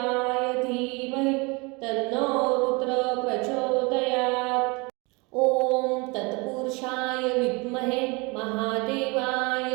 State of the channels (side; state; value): left; quieter; 27.9 dB